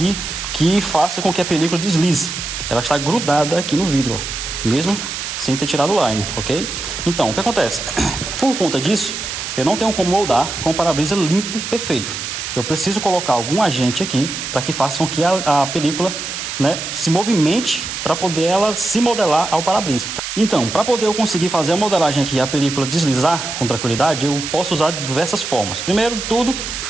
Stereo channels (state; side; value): noise; right; hiss, 6 dB below the sound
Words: que faça com que a película deslize. Ela está grudada aqui no vidro, ó, mesmo sem ter tirado o line, ok? Então, o que acontece? Por conta disso, eu não tenho como moldar com o para-brisa limpo, perfeito. Eu preciso colocar algum agente aqui para que faça com que a película, né, se movimente para poder ela se modelar ao para-brisa. Então, para poder eu conseguir fazer a modelagem aqui e a película deslizar com tranquilidade, eu posso usar diversas formas. Primeiro de tudo,